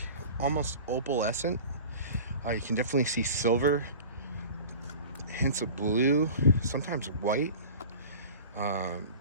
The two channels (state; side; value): inverted; both; correlation -0.39